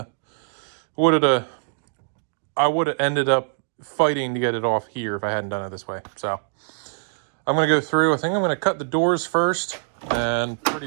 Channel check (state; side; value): silent; left; 62 dB below the other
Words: would have ended up fighting to get it off here if I hadn't done it this way. So I'm going to go through. I think I'm going to cut the doors first, and